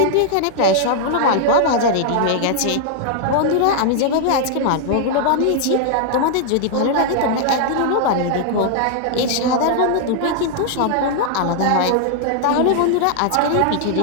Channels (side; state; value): both; different; correlation 0.00